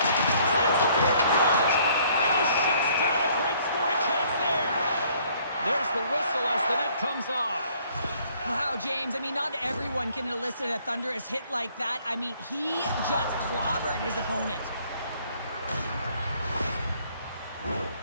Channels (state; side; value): inverted; both; correlation -0.61